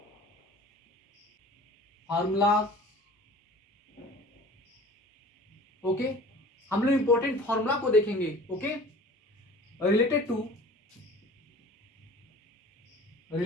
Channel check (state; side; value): normal; both; correlation 0.44